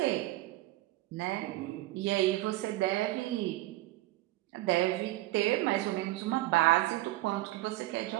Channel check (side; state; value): left; quieter; 17.9 dB